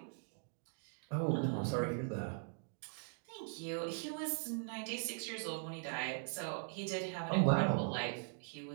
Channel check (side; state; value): left; silent; 51 dB below the other